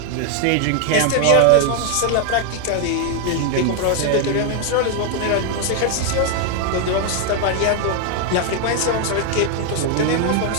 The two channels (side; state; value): both; different; correlation 0.00